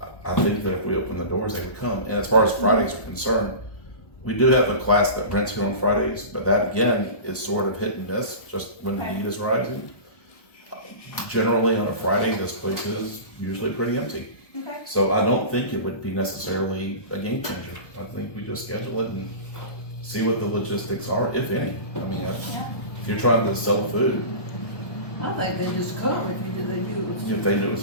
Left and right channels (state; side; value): late; right; 1.2 ms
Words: I think that if we open the doors, they would come. And as far as Fridays are concerned, we do have a class that rents here on Fridays, but that again is sort of hit and miss, just when the need is rising. Generally on a Friday, this place is usually pretty empty. Okay. So I don't think it would be necessarily a game changer. I think we just schedule it and see what the logistics are, if any. I mean, if you're trying to sell food, I think they just come if they do it. if they do as